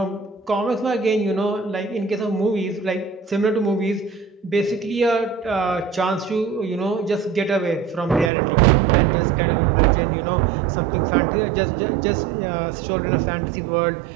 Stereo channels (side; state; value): left; drops out; at 8.3 s